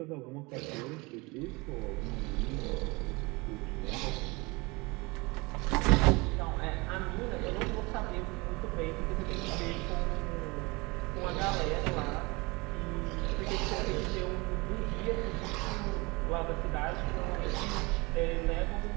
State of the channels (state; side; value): quieter; left; 25.6 dB